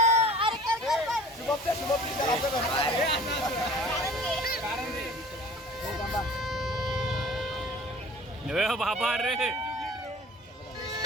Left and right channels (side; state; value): both; normal; correlation 0.46